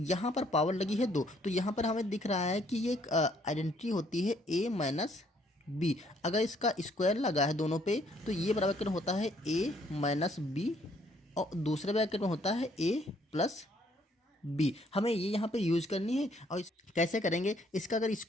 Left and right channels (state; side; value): normal; both; correlation 0.66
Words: यहाँ पर पावर लगी है 2, तो यहाँ पर हमें दिख रहा है कि ये एक आइडेंटिटी होती है ए माइनस बी। अगर इसका स्क्वायर लगा है दोनों पे तो ये ब्रैकेट में होता है ए माइनस बी और दूसरे ब्रैकेट में होता है ए प्लस बी। हमें ये यहाँ पे यूज करनी है और कैसे करेंगे, इसका अगर